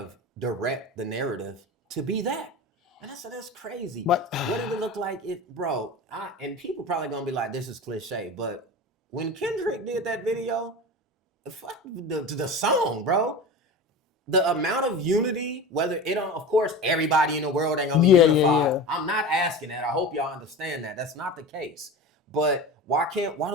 direct the narrative to be that. And I said, that's crazy. But what did it look like? And people probably going to be like, this is cliche. But when Kendrick did that video, fuck the song, bro. The amount of unity, whether it don't, of course, everybody in the world ain't gonna be unified. Yeah. I'm not asking that. I hope y'all understand that. That's not the case. But why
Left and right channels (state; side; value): normal; both; correlation 0.30